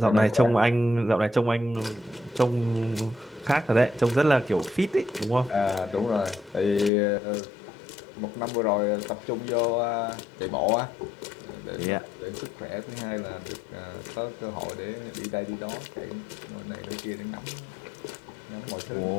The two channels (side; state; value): right; drops out; at 6.9 s